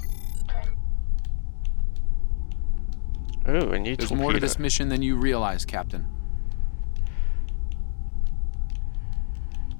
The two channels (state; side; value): silent; right; 61 dB below the other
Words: Oh, a new There's more to this mission than you realize, Captain.